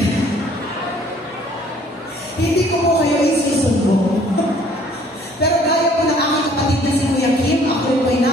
Hindi ko po kayo isusumbong. Pero gaya po ng aking kapatid na si Kuya Kim, ako rin po'y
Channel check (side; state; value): both; normal; correlation 0.57